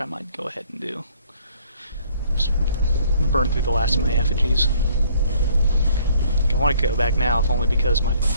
I might go ahead and do. Just burn through the last of my effigies. I want to go back now, if only because my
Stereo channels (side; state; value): both; inverted; correlation -0.60